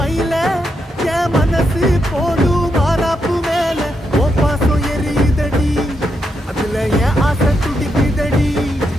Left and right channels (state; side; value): normal; both; correlation 0.82